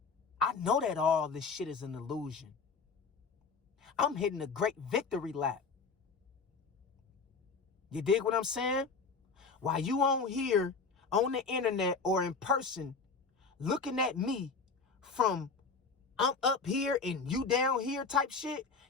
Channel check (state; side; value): quieter; right; 4.6 dB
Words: I know that all this shit is an illusion. I'm hitting a great victory lap. You dig what I'm saying? While you on here, on the internet or in person, looking at me from I'm up here and you down here type shit,